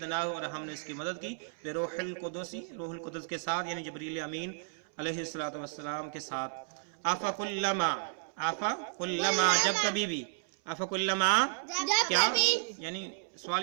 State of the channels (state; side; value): silent; left; 56 dB below the other